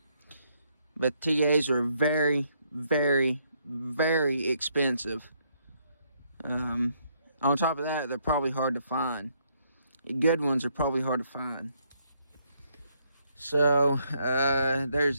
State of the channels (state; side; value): inverted; both; correlation -0.72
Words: but TAs are very, very, very expensive. On top of that, they're probably hard to find. The good ones are probably hard to find. So,